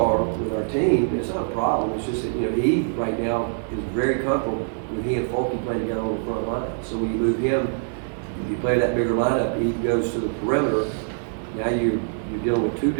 with our team, it's not a problem. It's just that, he right now is very comfortable with he and Folky playing together on the front line. So when you move him, if you play that bigger lineup, he goes to the perimeter. Now you're dealing with two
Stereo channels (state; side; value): silent; left; 63 dB below the other